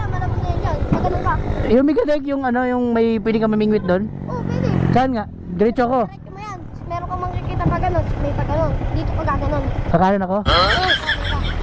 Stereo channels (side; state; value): both; identical; correlation 1.00